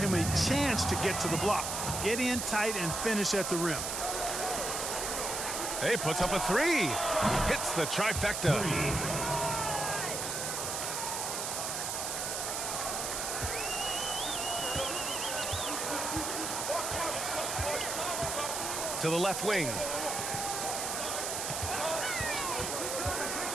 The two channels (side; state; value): right; noise; hiss, 2 dB below the sound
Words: a chance to get to the block. Get in tight and finish at the rim. Hey, puts up a 3. Hits the trifecta. To the left wing.